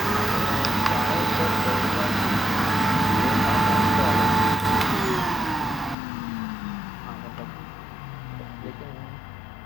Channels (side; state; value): right; drops out; at 6.0 s